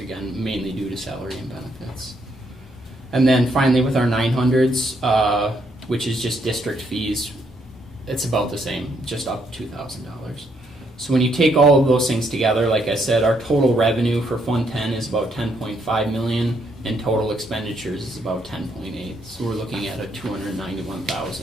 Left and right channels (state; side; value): normal; both; correlation 0.73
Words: mainly due to salary and benefits. And then finally with our 900s, which is just district fees, it's about the same, just up $2,000. So when you take all of those things together, like I said, our total revenue for Fund 10 is about $10.5 million, and total expenditures is about $10.8. So we're looking at a